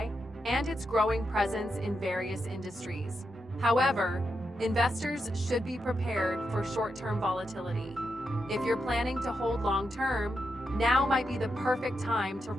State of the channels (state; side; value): normal; both; correlation 0.85